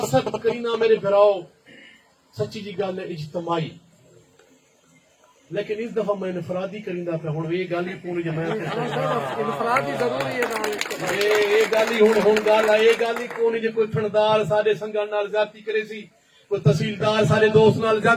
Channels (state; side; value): identical; both; correlation 1.00